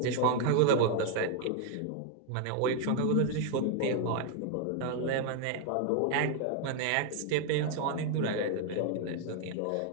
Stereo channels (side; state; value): both; different; correlation 0.00